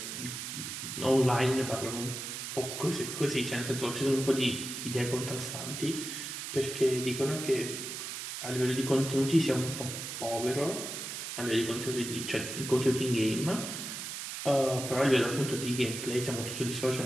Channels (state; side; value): noise; right; hiss, 6 dB below the sound